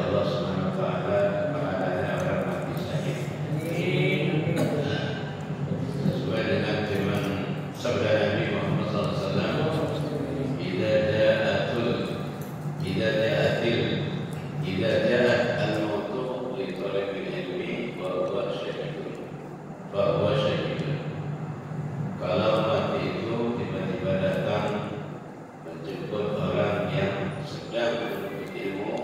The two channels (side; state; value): both; identical; correlation 1.00